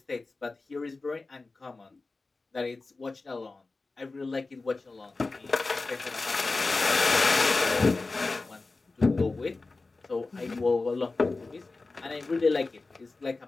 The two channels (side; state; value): right; quieter; 3.6 dB